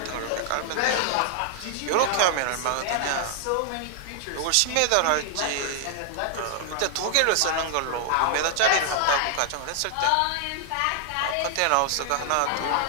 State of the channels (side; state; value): both; different; correlation -0.01